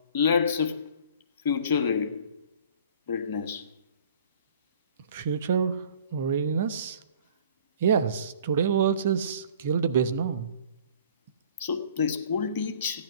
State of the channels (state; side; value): inverted; both; correlation -0.50